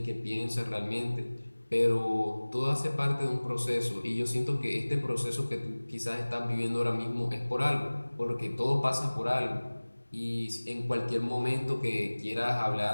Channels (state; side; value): inverted; both; correlation -1.00